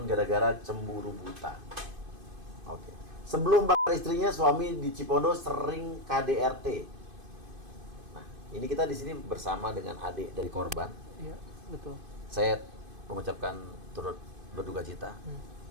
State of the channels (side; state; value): left; late; 2.5 ms